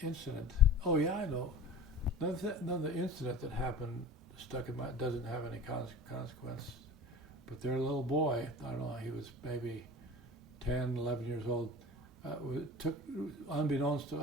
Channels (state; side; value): normal; both; correlation 0.39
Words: incident. Oh yeah, I know. Another incident that happened stuck in my, doesn't have any consequence. But their little boy, I don't know, he was maybe 10, 11 years old, took, unbeknownst to